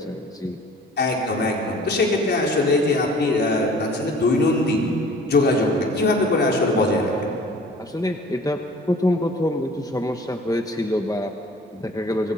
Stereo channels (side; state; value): both; normal; correlation 0.48